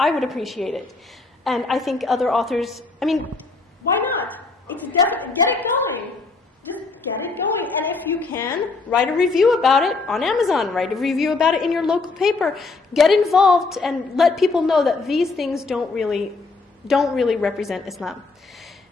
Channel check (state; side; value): quieter; right; 3.9 dB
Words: would appreciate it. And I think other authors, why not? It's definitely, get it going. Just get it going. And if you can, write a review about it on Amazon. Write a review about it in your local paper. Get involved and let people know that these things don't really represent Islam.